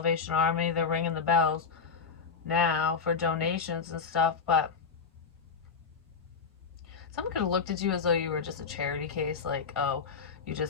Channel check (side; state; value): right; quieter; 5.5 dB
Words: Army, they're ringing the bells now for donations and stuff, but someone could have looked at you as though you were just a charity case, like, oh, you